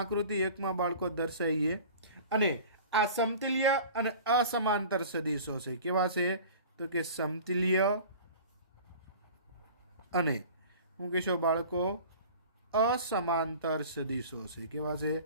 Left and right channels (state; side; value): inverted; both; correlation -0.41